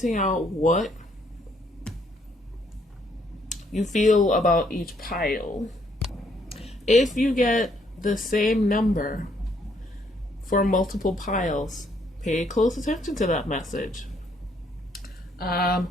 out what you feel about each pile. If you get the same number for multiple piles, pay close attention to that message.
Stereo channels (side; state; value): both; normal; correlation 0.69